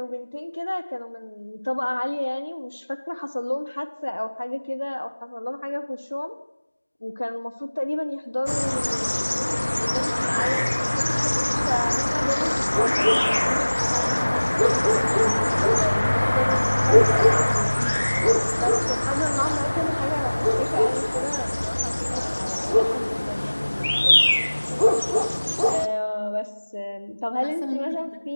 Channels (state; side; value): inverted; both; correlation -1.00